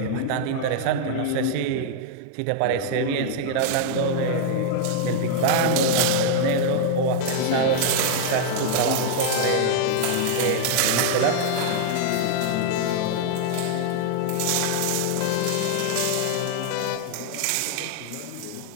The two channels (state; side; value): different; both; correlation -0.01